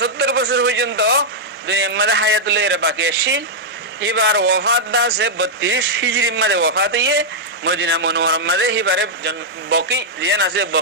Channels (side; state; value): both; normal; correlation -0.06